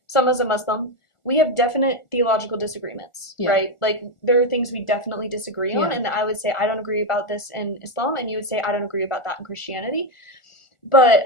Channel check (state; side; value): late; right; 1.4 ms